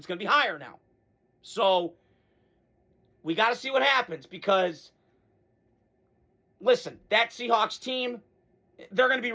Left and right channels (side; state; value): both; identical; correlation 1.00